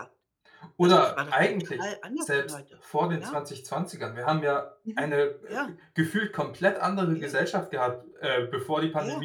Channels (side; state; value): both; identical; correlation 1.00